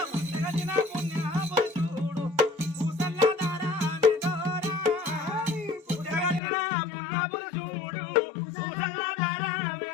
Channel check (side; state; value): right; drops out; at 6.4 s